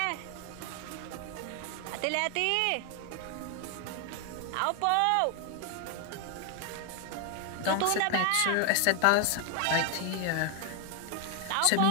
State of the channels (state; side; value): different; both; correlation 0.00